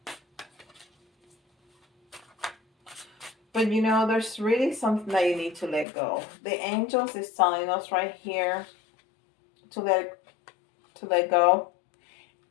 But you know, there's really something that you need to let go. The angels is telling us right here to let go.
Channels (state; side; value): drops out; right; at 5.9 s